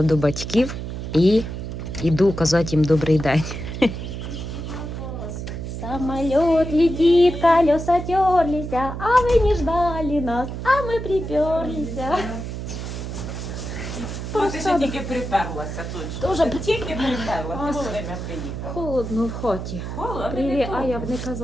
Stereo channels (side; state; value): right; noise; hum, 6 dB below the sound